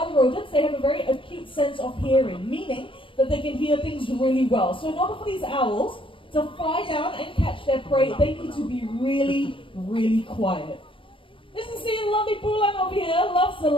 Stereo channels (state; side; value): late; right; 0.25 ms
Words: rodents, they have a very acute sense of hearing, meaning that they can hear things really well. So in order for these owls to fly down and catch their prey, they need to be really, really quiet. This is seeing lovely Bulan over here, loves the